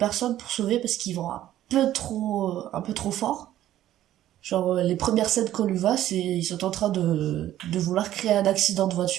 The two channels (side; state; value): left; quieter; 13.0 dB